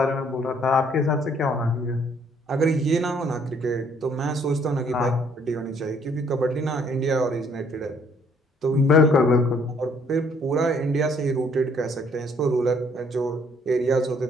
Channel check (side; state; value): both; normal; correlation 0.63